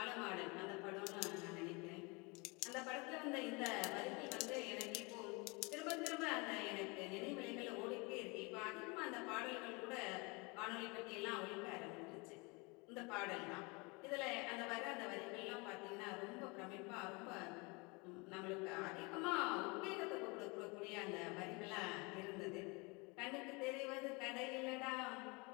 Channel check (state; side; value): quieter; right; 28.3 dB